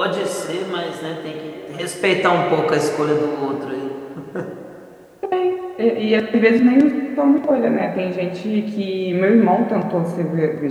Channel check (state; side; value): identical; both; correlation 1.00